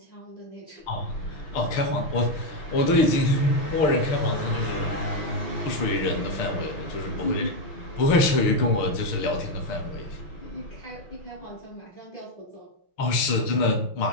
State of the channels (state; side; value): late; right; 6.6 ms